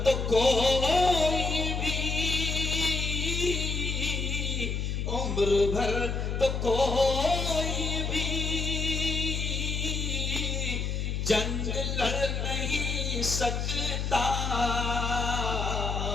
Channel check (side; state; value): left; noise; hum, 1 dB below the sound